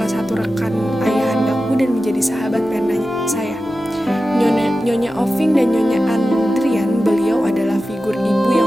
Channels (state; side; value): normal; both; correlation 0.93